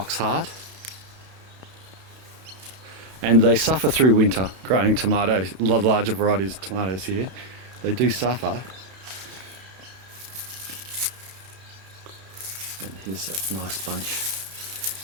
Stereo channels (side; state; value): left; late; 32 ms